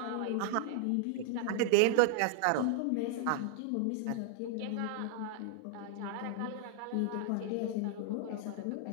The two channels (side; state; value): both; different; correlation -0.01